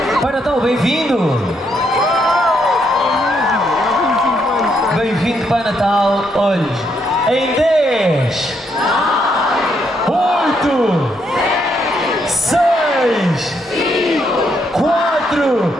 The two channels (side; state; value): both; normal; correlation 0.75